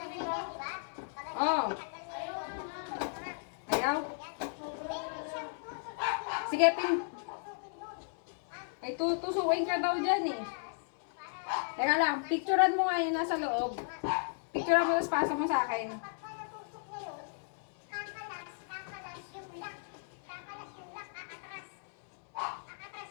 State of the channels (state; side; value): silent; right; digital silence